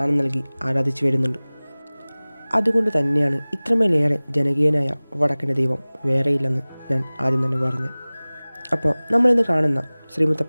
നൽകി ആരാധിച്ചു വരുന്നുണ്ട്. അതുകൊണ്ട് തന്നെയാണ് ഇത്രമേലേറെ ജനകീയനായ വടക്കൻ്റെ ദൈവം വേറെയില്ലെന്ന് ഞാൻ ആദ്യം തന്നെ പറഞ്ഞു. അപ്പോൾ നമ്മളിന്ന് കാണുന്ന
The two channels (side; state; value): both; inverted; correlation -1.00